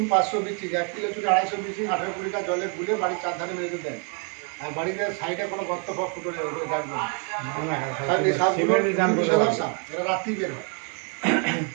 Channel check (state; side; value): quieter; left; 39.3 dB